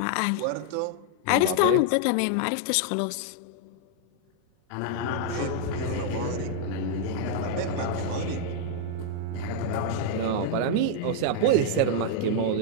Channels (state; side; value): different; both; correlation -0.01